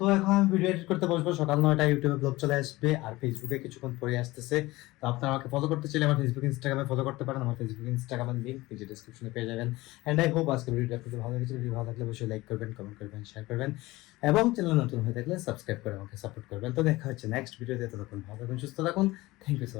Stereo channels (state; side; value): quieter; right; 19.7 dB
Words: এখন আমি ভিডিও এডিট করতে বসবো সকাল 9টায় ইউটিউবে ব্লগ চলে আসবে আর ফেসবুকে কিছুক্ষণ পরে আসতেছে তো আপনারা আমাকে ফলো করতে চাইলে আমার ফেসবুক ইনস্টাগ্রামে ফলো করতে পারেন আমার ফেসবুক ইনস্টাগ্রামের লিঙ্ক নিচে ডেসক্রিপশনে পেয়ে যাবেন এন্ড আই হোপ আজকের ভিডিওটা আপনাদের ভালো লেগেছে ভিডিও ভালো লাগলে অবশ্যই লাইক করবেন কমেন্ট করবেন শেয়ার করবেন এবং চ্যানেল নতুন হয়ে থাকলে সাবস্ক্রাইব করে আমাকে সাপোর্ট করবেন তো দেখা হচ্ছে নেক্সট ভিডিওতে ততক্ষণ ভালো থাকুন সুস্থ থাকুন thank you so